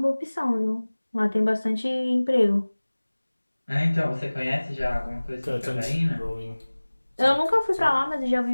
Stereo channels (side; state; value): both; inverted; correlation -1.00